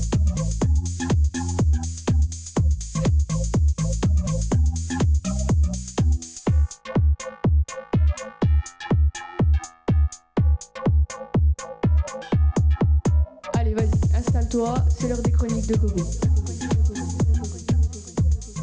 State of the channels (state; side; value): identical; both; correlation 1.00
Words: Allez, vas-y, installe-toi, c'est l'heure des chroniques de Coco.